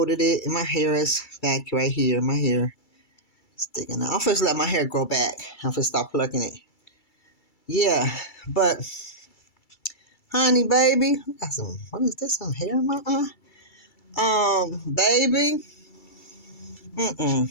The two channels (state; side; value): late; right; 2.3 ms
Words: it, and my hair is back right here. My hair sticking out. I'm supposed to let my hair grow back. I'm supposed to stop plucking it. Yeah, but honey, baby, what is this? Some hair in my eye? Baby,